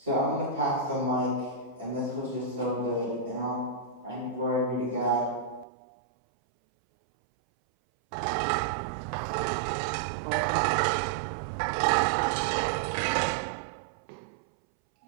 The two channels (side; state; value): left; drops out; at 5.7 s